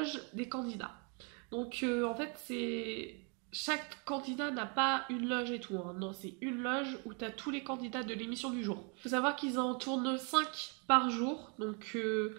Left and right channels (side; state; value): left; quieter; 36.2 dB